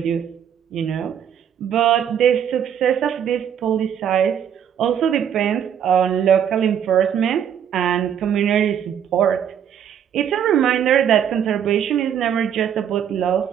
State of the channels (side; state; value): left; quieter; 8.9 dB